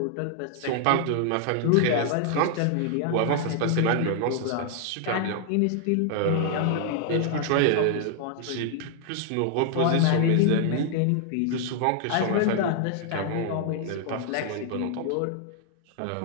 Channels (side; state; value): both; different; correlation 0.00